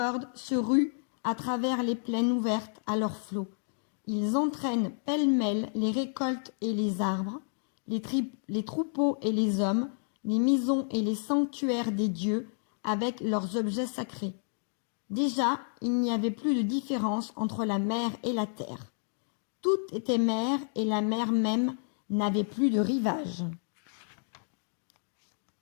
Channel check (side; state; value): right; silent; digital silence